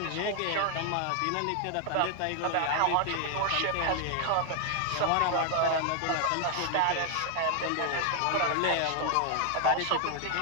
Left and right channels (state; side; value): different; both; correlation 0.00